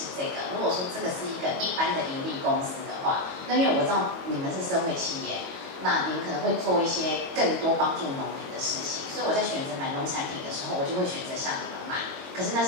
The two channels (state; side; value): late; left; 22 ms